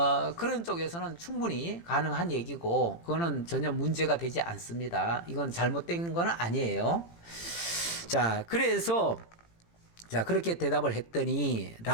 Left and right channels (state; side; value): late; right; 18 ms